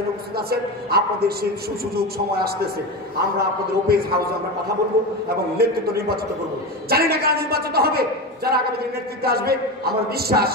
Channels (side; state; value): both; normal; correlation 0.21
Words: উপস্থিত আছেন, আপনাদের সেই সুযোগ সময় আসতেছে, আমরা আপনাদের ওপেন হাউসে আমরা কথা বলবো এবং নেতৃত্ব নির্বাচিত করবো। জানি না কারা নির্বাচিত হবে, যারা আগামী দিনে নেতৃত্বে আসবে, আমার বিশ্বাস